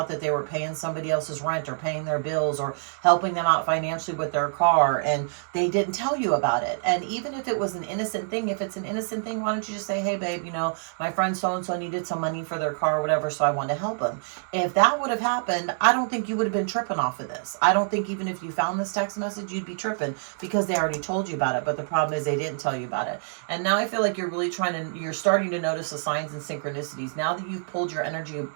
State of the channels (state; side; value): silent; left; digital silence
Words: that they were paying somebody else's rent or paying their bills or helping them out financially with their car, and they didn't tell you about it. And even if it was an innocent thing, if it's an innocent thing, why don't you just say, hey babe, you know, my friend so-and-so needed some money for their car or whatever, so I wanted to help them. If that would have happened, I don't think you would have been tripping off of this. I don't think even if you found this text message, you'd be tripping because they already told you about it. But the problem is they didn't tell you about it. And now I feel like you're really you're starting to notice the signs and synchronicities. Now that you've pulled your energy